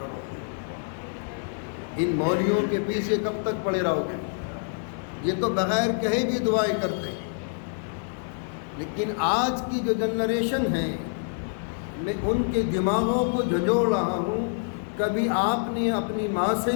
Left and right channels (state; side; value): silent; right; 60 dB below the other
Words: ان مولویوں کے پیچھے کب تک پڑے رہو گے؟ یہ تو بغیر کہے بھی دعائیں کرتے ہیں، لیکن آج کی جو جنریشن ہے، میں ان کے دماغوں کو جھنجھوڑ رہا ہوں۔ کبھی آپ نے اپنی ماں سے